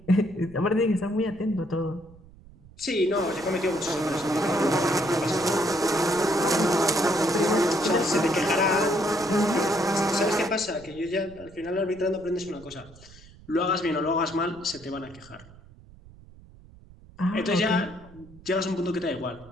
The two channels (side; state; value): right; noise; rumble, 22 dB below the sound